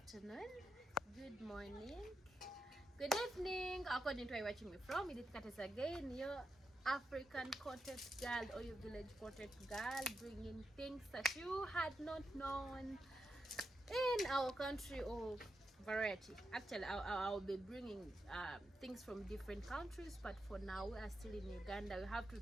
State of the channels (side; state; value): both; normal; correlation 0.87